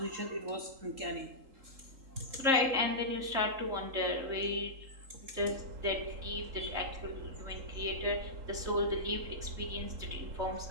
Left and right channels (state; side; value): late; left; 3.8 ms